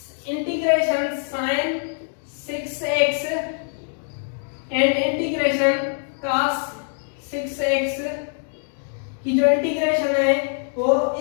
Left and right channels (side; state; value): right; silent; 63 dB below the other